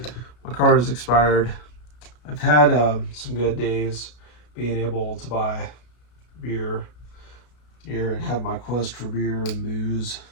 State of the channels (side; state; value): right; late; 33 ms